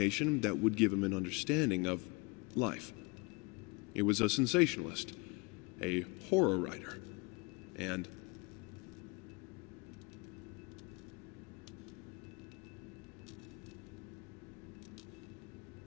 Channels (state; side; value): quieter; right; 29.2 dB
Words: that would give him an understanding of life. It was a sensationalist, a horror writer, and